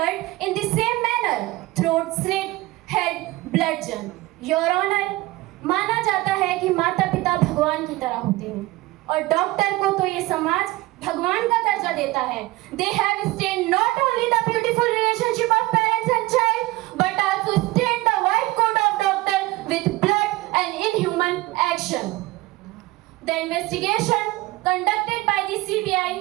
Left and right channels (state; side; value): quieter; left; 19.7 dB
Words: in the same manner, throat slit, head bludgeoned. Your Honor, माना जाता है कि माता पिता भगवान की तरह होते हैं और डॉक्टर को तो ये समाज भगवान का दर्जा देता है. They have stained not only the beautiful relationship of parents and child, but also stained the white coat of doctor with blood and inhuman action. The investigation conducted by the CBI